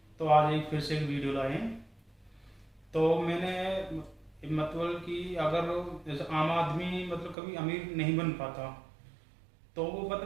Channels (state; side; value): drops out; left; at 7.4 s